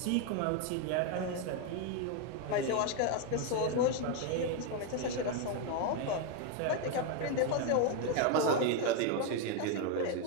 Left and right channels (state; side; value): different; both; correlation 0.01